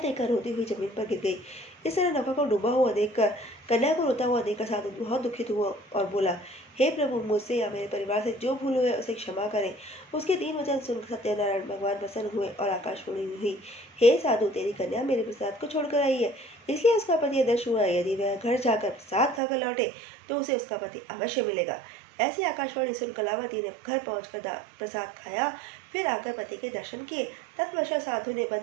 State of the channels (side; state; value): left; drops out; at 19.4 s